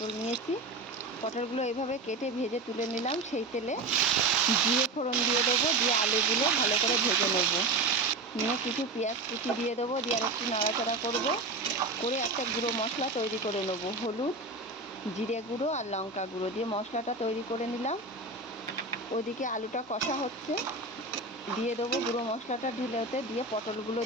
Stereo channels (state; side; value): quieter; left; 3.2 dB